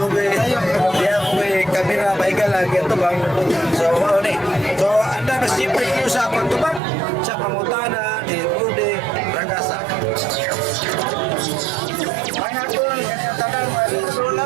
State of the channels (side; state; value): left; drops out; at 6.8 s